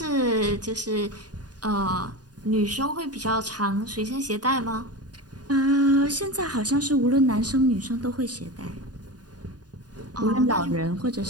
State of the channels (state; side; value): late; left; 0.69 ms